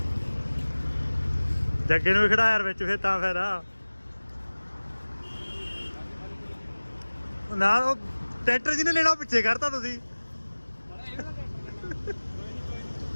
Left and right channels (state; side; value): inverted; both; correlation -1.00